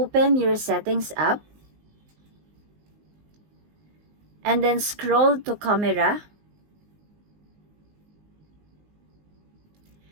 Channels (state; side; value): late; left; 19 ms